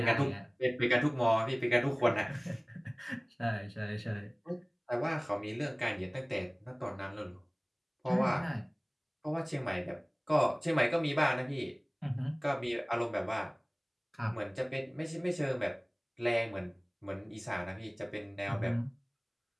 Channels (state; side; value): identical; both; correlation 1.00